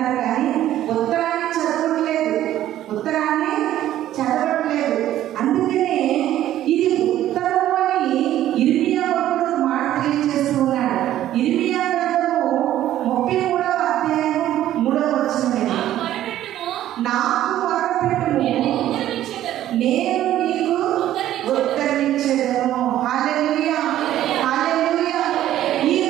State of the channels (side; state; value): left; quieter; 12.8 dB